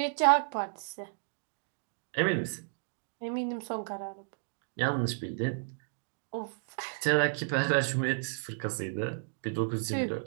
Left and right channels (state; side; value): silent; left; digital silence